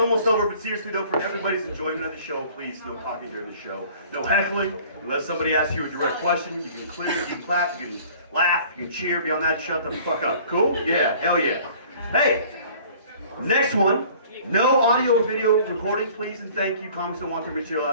over, but seriously though, for everybody's enjoyment of the show, please, no talking during the show. No heckling. Unless somebody asks you a direct question, you can clear, you can clap, you can laugh, you can cheer. Beyond that, shut the fuck up. Cool? Yeah, hell yeah. Hey, next one. No audio or video recording, please and thank you. Comics don't want their material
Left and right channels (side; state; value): both; inverted; correlation -0.50